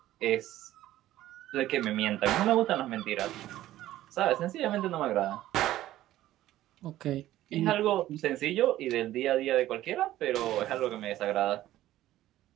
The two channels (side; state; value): left; quieter; 14.4 dB